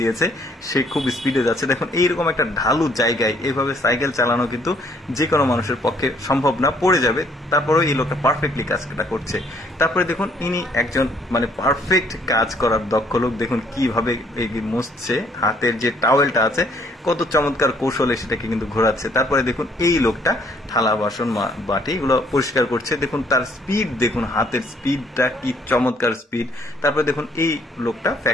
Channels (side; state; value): both; normal; correlation 0.64